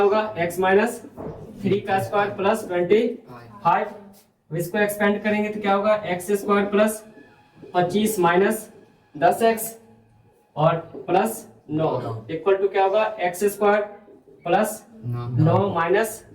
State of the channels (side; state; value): both; identical; correlation 1.00